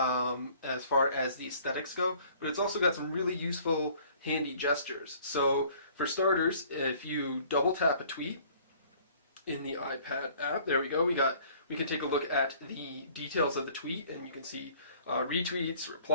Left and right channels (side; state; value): both; inverted; correlation -0.55